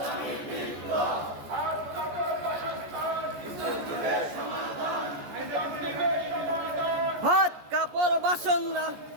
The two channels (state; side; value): late; left; 14 ms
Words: ভাত কাপড় বাসন না